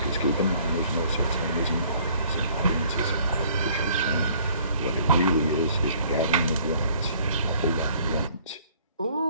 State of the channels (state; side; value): inverted; both; correlation -0.58